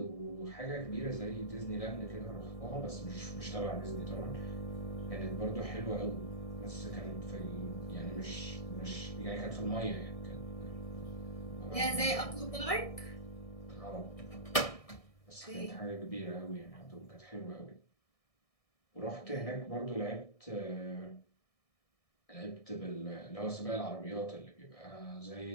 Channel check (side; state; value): right; late; 1.6 ms